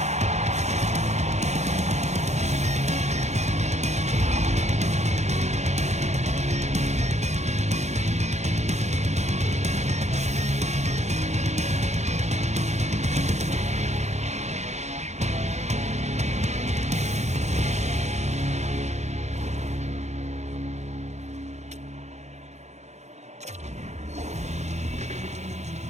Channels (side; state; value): left; late; 0.33 ms